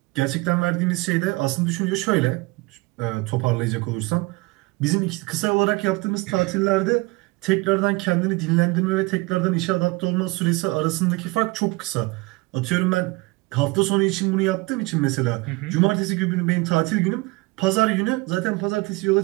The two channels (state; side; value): quieter; left; 23.7 dB